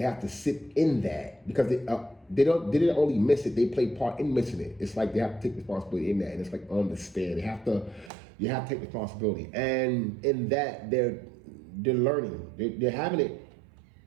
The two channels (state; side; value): drops out; left; at 8.1 s